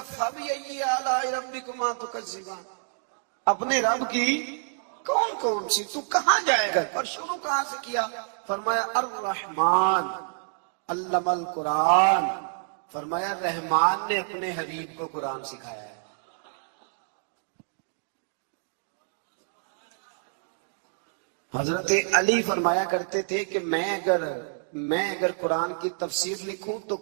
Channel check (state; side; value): silent; left; digital silence